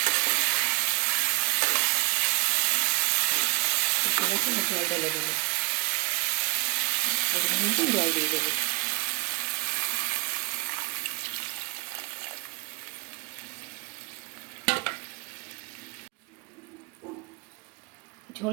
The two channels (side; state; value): left; quieter; 31.5 dB